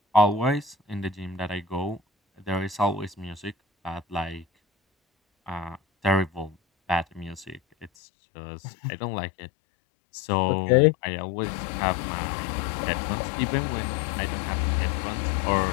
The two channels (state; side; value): drops out; right; at 7.9 s